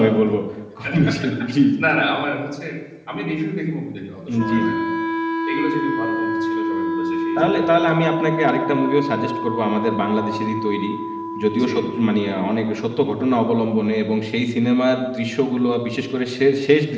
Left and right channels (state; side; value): identical; both; correlation 1.00